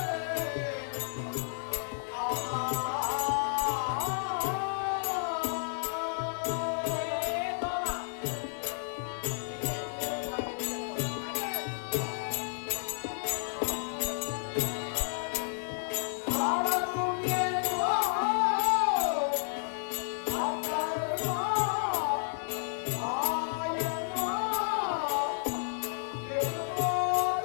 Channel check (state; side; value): silent; right; digital silence